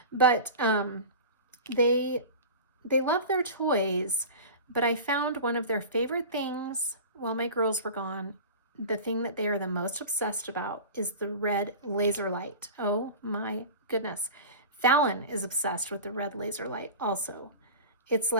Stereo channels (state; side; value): inverted; both; correlation -0.33